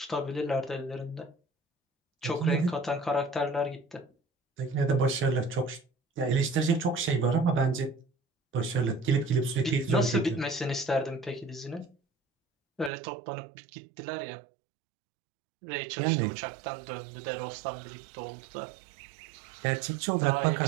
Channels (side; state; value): left; drops out; at 12.9 s